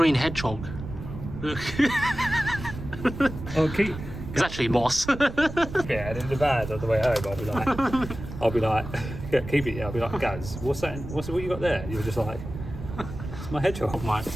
hedgehog. Look. Oh, keep... It's actually moss. Yeah, and in the van on the way home, I'll be like, yeah, keep it. Yeah, I'll be like, Gaz, what's that? What you got there? You're just like, it's my hedgehog. Mine.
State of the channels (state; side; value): noise; right; rumble, 10 dB below the sound